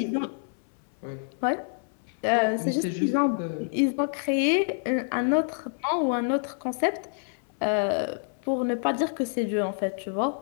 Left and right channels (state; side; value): silent; right; 60 dB below the other